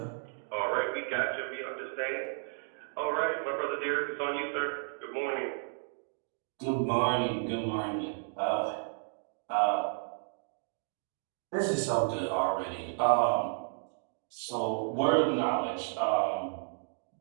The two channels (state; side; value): silent; left; digital silence